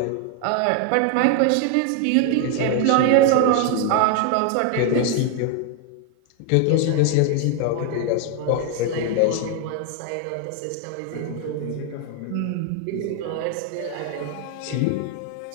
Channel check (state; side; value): different; both; correlation 0.00